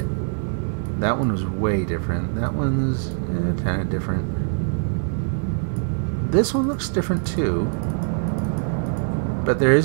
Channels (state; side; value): silent; left; 63 dB below the other